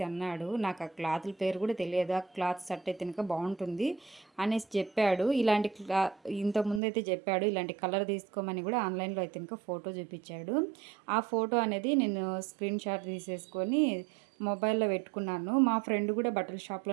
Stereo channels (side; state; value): left; drops out; at 6.8 s